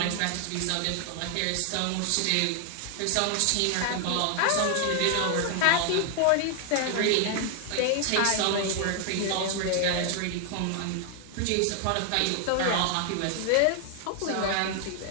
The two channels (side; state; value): both; different; correlation 0.00